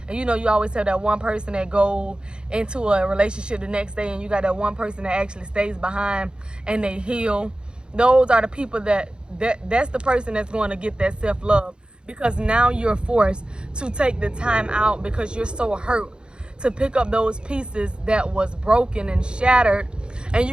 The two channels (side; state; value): left; late; 0.050 ms